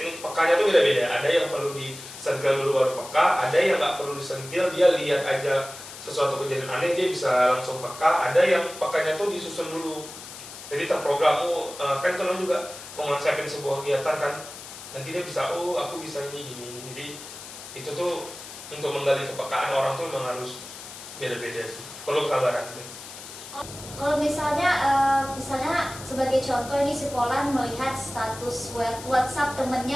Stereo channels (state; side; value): noise; left; hiss, 13 dB below the sound